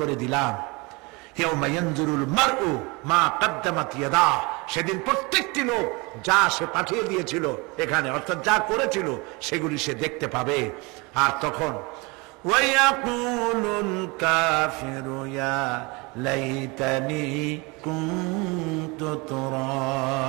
দিলাম। ইয়াউমা ইয়ানজুরুল মার'উ মা কদ্দামাত ইয়াদাহু, সেদিন প্রত্যেকটি লোক যা সে পাঠিয়ে দিয়েছিল এখানে, অর্থাৎ যা করেছিল সেগুলি সে দেখতে পাবে। আর তখন ওয়ায়াকুলুল কাফিরু ইয়া লাইতানি কুনতু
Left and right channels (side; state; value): left; quieter; 27.0 dB